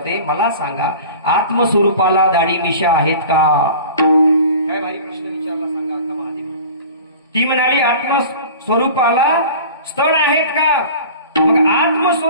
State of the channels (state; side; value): inverted; both; correlation -0.40